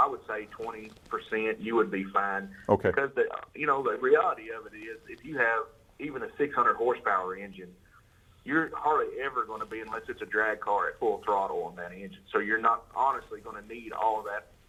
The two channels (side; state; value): both; identical; correlation 1.00